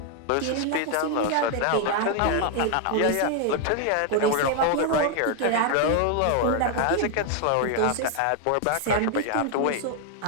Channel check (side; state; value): both; different; correlation 0.01